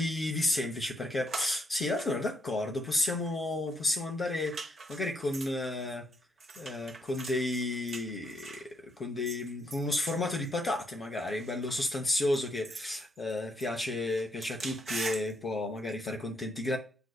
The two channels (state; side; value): normal; both; correlation 0.74